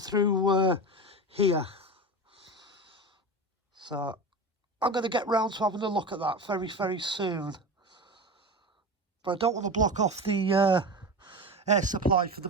here. So I'm going to get round to having a look at that very, very soon. But I don't want to block off the air supply for the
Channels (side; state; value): both; normal; correlation 0.26